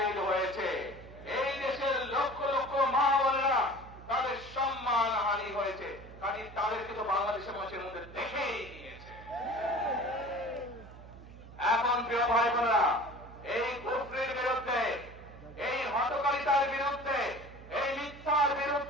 হয়েছে, এই দেশের লক্ষ লক্ষ মা বোনেরা তাদের সম্মান হানি হয়েছে। কাজে তাদেরকে তো বাংলাদেশের মানুষের মধ্যে দেখেই নিয়েছে। এখন প্রিয় ভাই বোনেরা, এই কুফরির বিরুদ্ধে, এই হঠকারিতার বিরুদ্ধে, এই মিথ্যার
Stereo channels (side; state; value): right; noise; hum, 17 dB below the sound